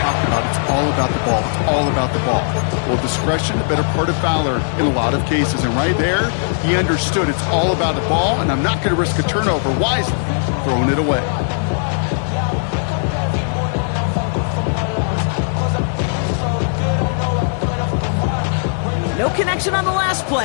about it's all about the ball, it's all about the ball. Well, discretion, the better part of Fowler in a lot of cases. And right there, he understood it's all about the ball, and I'm not going to risk a turnover wisely, throwing it away. No connection on the last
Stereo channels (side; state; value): right; silent; 63 dB below the other